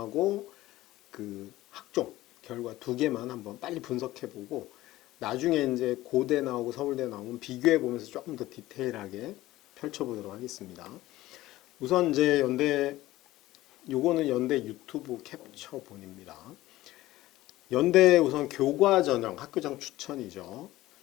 그 학종 결과 두 개만 한번 빨리 분석해보고 나중에 이제 고대 나오고 서울대 나오면 비교해 보면서 조금 더 디테일하게 펼쳐보도록 하겠습니다. 우선 이제 요거는 연대 유튜브 캡처본입니다. 연대 우선 교과 전형 학교장 추천이죠.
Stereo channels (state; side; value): quieter; right; 16.6 dB